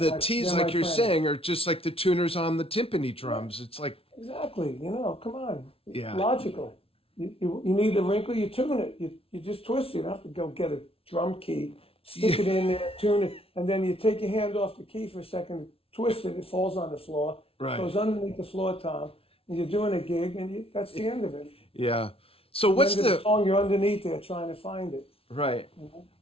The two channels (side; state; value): right; late; 0.27 ms